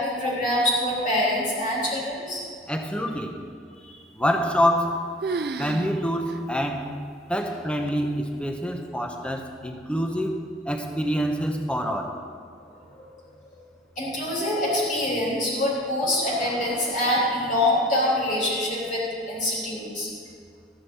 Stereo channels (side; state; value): both; normal; correlation 0.46